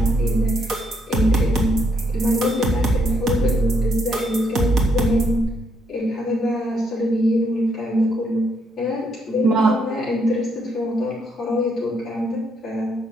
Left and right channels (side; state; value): both; normal; correlation 0.74